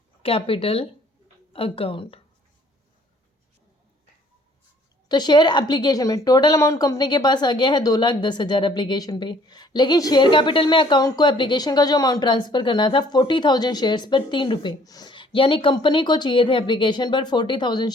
capital account. तो शेयर एप्लीकेशन में टोटल अमाउंट कंपनी के पास आ गया है 2,10,000 एप्लीकेशन पे, लेकिन शेयर कैपिटल में अकाउंट को एप्लीकेशन का जो अमाउंट ट्रांसफ़र करना था 40,000 शेयर्स पर 3 रुपये, यानी कंपनी को चाहिए थे एप्लीकेशन पर 40,000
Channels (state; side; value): normal; both; correlation 0.59